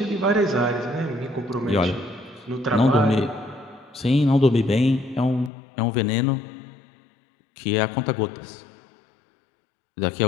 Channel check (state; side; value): drops out; right; at 5.5 s